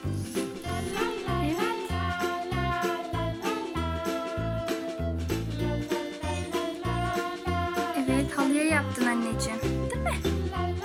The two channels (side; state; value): both; identical; correlation 1.00